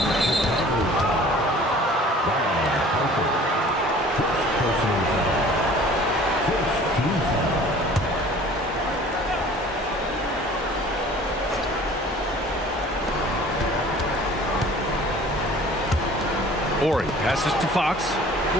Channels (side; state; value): both; normal; correlation 0.48